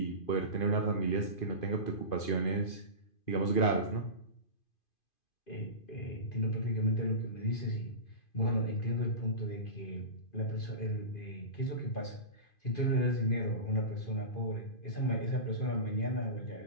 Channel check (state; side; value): late; right; 2.5 ms